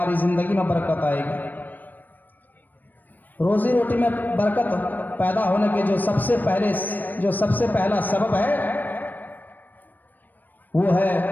ज़िंदगी में बरकत आएगी। रोज़ी रोटी में बरकत पैदा होने के जो सबसे पहला सबब है वो है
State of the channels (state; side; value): late; right; 0.087 ms